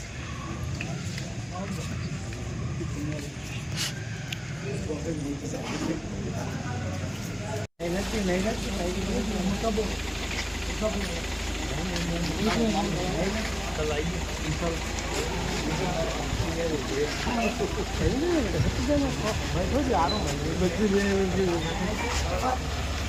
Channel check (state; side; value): identical; both; correlation 1.00